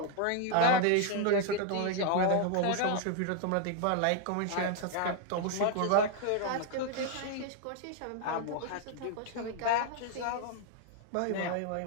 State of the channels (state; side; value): different; both; correlation 0.00